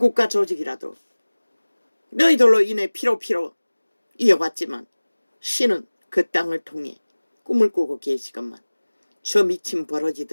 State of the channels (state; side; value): inverted; both; correlation -1.00